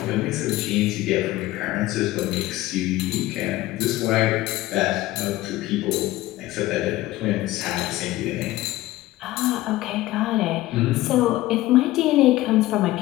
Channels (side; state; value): right; quieter; 16.8 dB